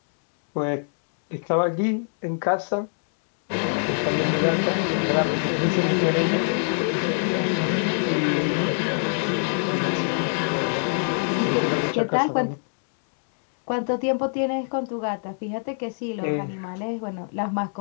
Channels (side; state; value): right; silent; digital silence